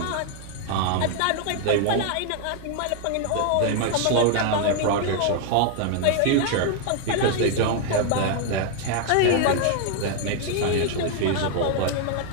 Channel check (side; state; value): both; different; correlation 0.00